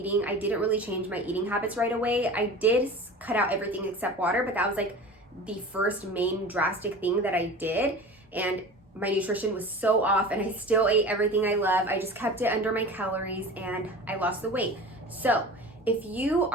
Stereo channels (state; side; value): normal; both; correlation 0.36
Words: I didn't really change my eating habits right away. I did cut out everything except water, but that was like the first main drastic thing that I did. And my nutrition was so off and I still ate everything I love. I just kept it under my calories and I lost the weight. So if you